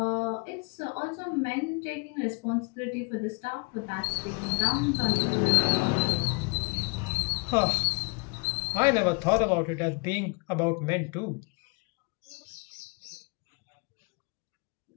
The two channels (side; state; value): right; quieter; 32.2 dB